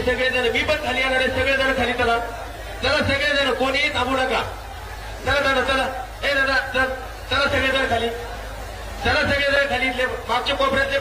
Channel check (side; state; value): both; identical; correlation 1.00